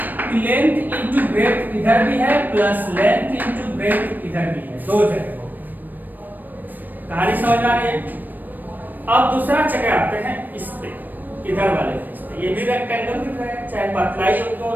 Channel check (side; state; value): left; late; 0.089 ms